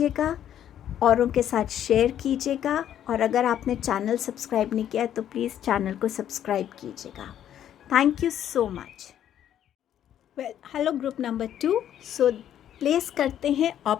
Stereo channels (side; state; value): right; quieter; 10.6 dB